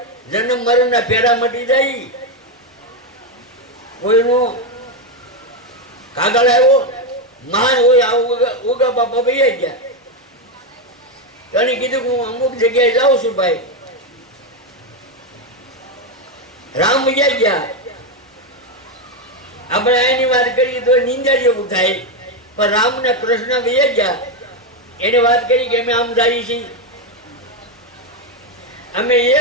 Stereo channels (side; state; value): both; normal; correlation 0.07